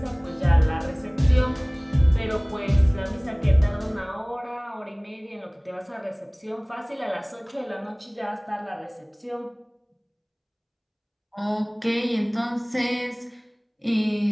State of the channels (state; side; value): identical; both; correlation 1.00